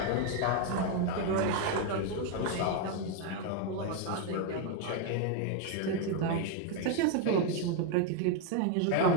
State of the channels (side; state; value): both; different; correlation 0.02